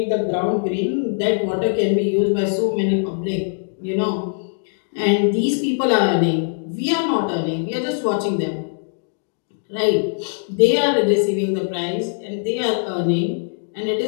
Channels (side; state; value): right; silent; 64 dB below the other